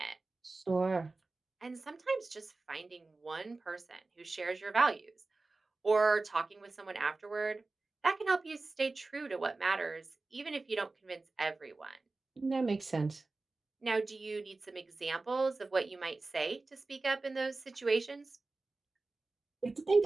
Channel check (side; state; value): left; quieter; 3.4 dB